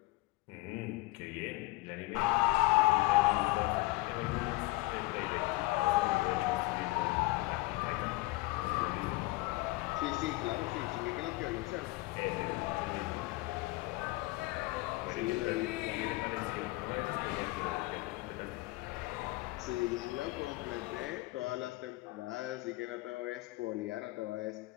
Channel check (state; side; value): quieter; right; 20.9 dB